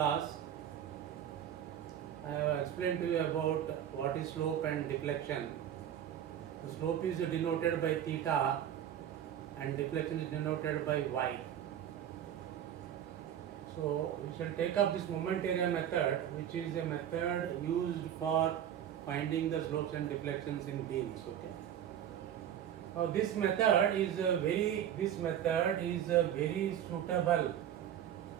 I have explained to you about what is slope and deflection. The slope is denoted by theta and deflection is denoted by y. So we shall take up this moment area method, which is a method used for finding the slopes and deflections in beams. Okay. Now this method is very suitable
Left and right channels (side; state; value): left; quieter; 10.2 dB